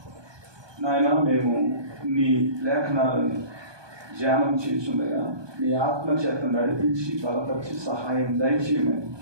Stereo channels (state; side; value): late; left; 1.2 ms